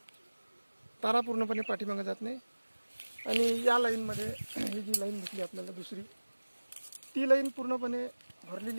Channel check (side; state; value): both; inverted; correlation -1.00